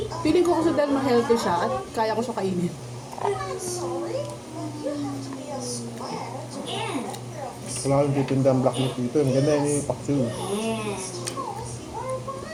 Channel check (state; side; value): identical; both; correlation 1.00